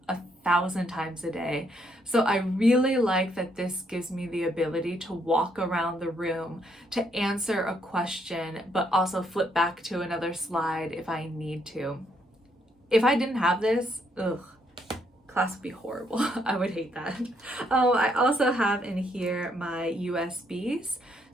1,000 times a day. So I really like that this gives me the ability to walk around the room, to answer a question, but also flip back to another slide if I need to. If I didn't have this, class would be horrible. I would hate that. I also have in here my USBs.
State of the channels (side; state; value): both; normal; correlation 0.73